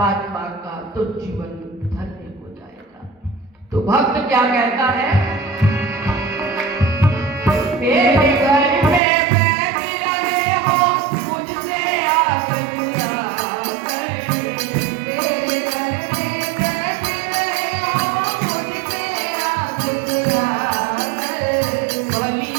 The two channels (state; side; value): drops out; left; at 9.0 s